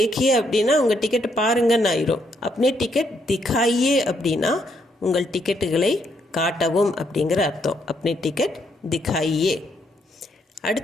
அப்படின்னா உங்கள் டிக்கெட்டை பாருங்கன்னு ஆயிரும். அப்னே டிக்கெட் திகாயே அப்படின்னா உங்கள் டிக்கெட்டுகளை காட்டவும் அப்படிங்கிற அர்த்தம். அப்னே டிக்கெட் திகாயே.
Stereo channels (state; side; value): normal; both; correlation 0.74